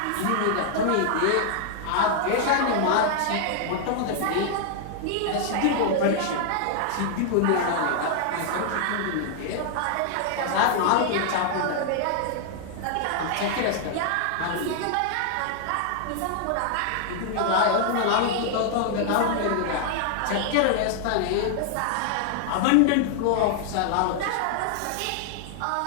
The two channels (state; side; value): different; both; correlation 0.00